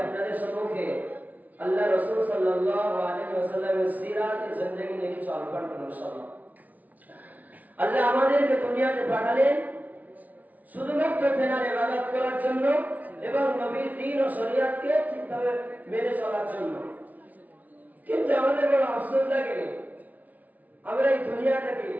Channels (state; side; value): late; left; 0.075 ms